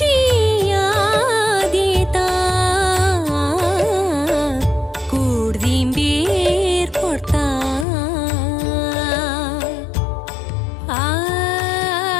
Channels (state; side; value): drops out; right; at 7.9 s